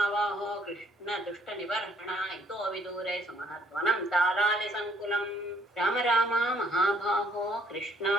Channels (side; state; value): both; normal; correlation 0.64